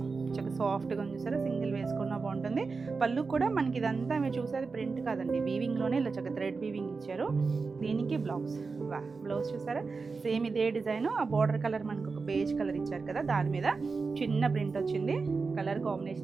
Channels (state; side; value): quieter; left; 4.5 dB